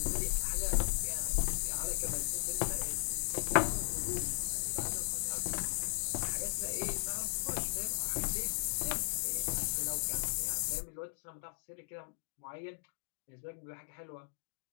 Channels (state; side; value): silent; right; digital silence